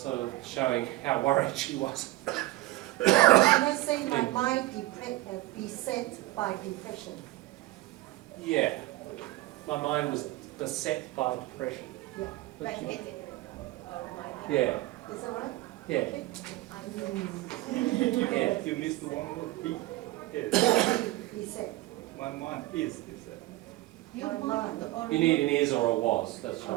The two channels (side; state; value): left; quieter; 18.3 dB